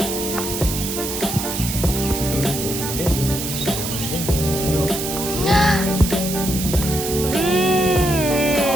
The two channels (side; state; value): right; noise; hiss, 5 dB below the sound